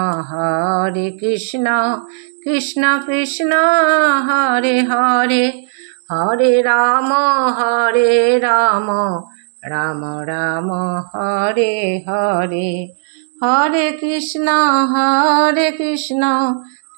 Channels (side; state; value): left; silent; digital silence